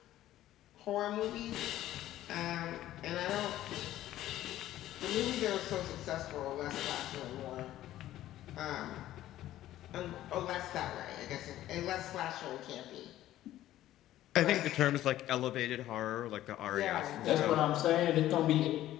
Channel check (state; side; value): quieter; right; 13.8 dB